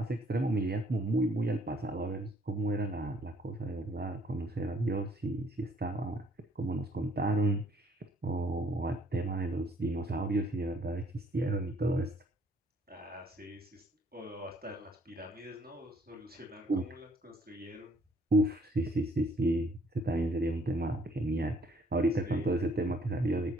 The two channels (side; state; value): both; normal; correlation 0.63